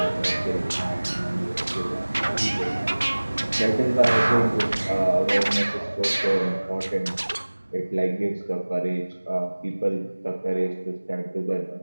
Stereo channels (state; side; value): inverted; both; correlation -1.00